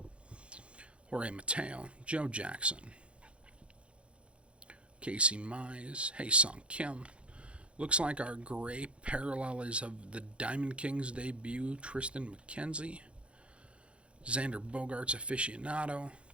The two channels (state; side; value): late; left; 0.059 ms